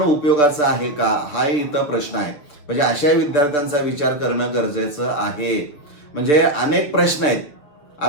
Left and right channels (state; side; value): late; right; 6.8 ms